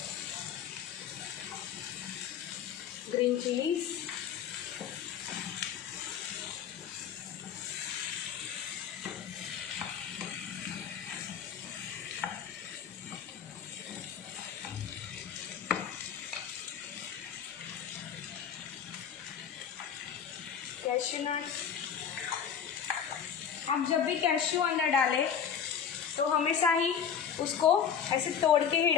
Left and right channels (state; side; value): quieter; right; 7.9 dB